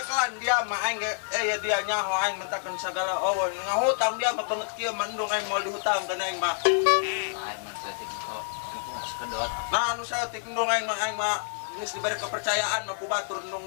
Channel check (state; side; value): silent; right; 59 dB below the other